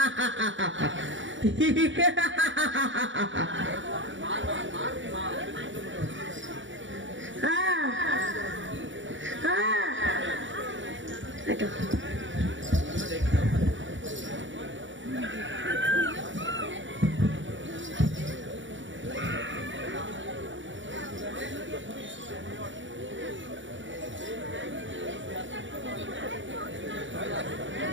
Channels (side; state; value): left; late; 0.55 ms